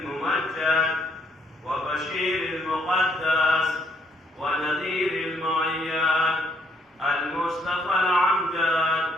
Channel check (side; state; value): both; normal; correlation 0.68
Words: وبشير المقدس ونذير المعياد المصطفى العمجد